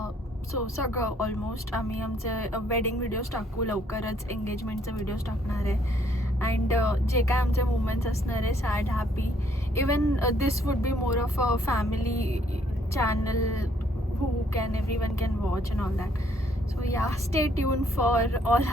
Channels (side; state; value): both; normal; correlation 0.66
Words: So सगळं almost आम्ही आमचे wedding videos टाकू, लवकरच एंगेजमेंटचे व्हिडिओज टाकणार आहे. अँड जे काय आमचे मुमेंट्स असणार आहे, sad, happy, even this would be more of a family channel who can everyone can watch and all that. So yeah, stay tuned for all